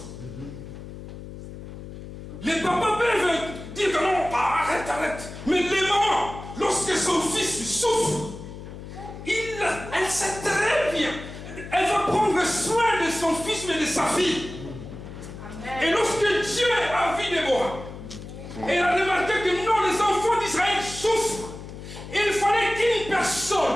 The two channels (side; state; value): left; noise; hum, 12 dB below the sound